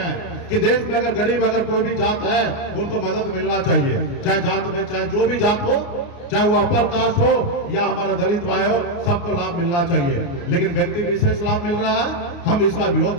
कि देश में अगर गरीब अगर कोई भी जात है उनको मदद मिलना चाहिए, चाहे जात में चाहे जो भी जात हो, चाहे वो अपर कास्ट हो या हमारा दलित भाई हो, सबको लाभ मिलना चाहिए। लेकिन व्यक्ति विशेष लाभ मिल रहा है, हम इसका विरोध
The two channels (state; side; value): late; right; 29 ms